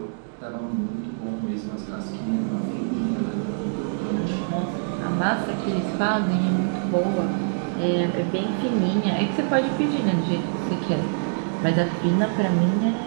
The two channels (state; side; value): silent; left; digital silence